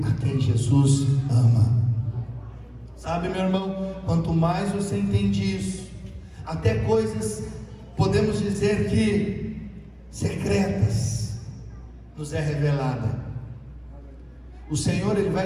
a quem Jesus ama. Sabe, meu irmão, quanto mais você entende isso, até coisas, podemos dizer que secretas, nos é revelada. O Senhor, Ele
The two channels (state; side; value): identical; both; correlation 1.00